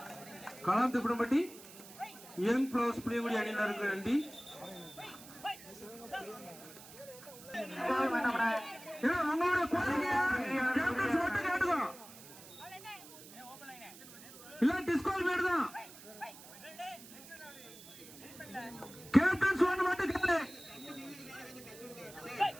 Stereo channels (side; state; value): right; noise; hiss, 17 dB below the sound